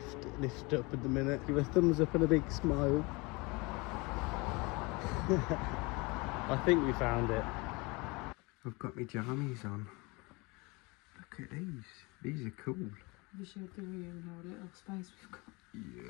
up at the minute. Give a thumbs up and a big smile. I think we found it. I've got my jammies on. Look at these. These are cool. We should do in our little space we've got.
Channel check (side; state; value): right; quieter; 26.4 dB